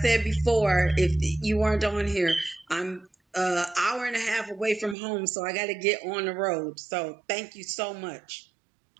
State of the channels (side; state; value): left; drops out; at 5.0 s